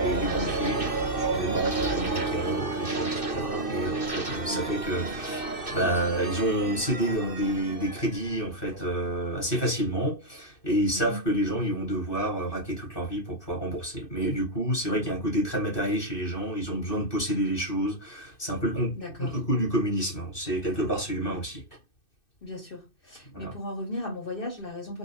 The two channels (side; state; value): right; late; 2.6 ms